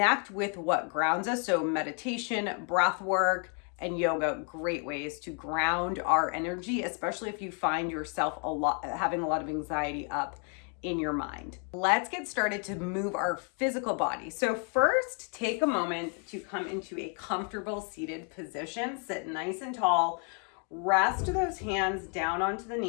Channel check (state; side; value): quieter; right; 39.6 dB